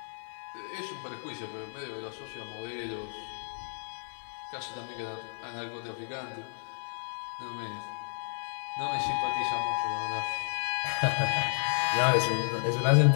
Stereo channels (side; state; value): right; silent; digital silence